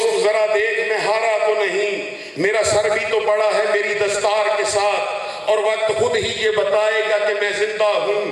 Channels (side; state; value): both; identical; correlation 1.00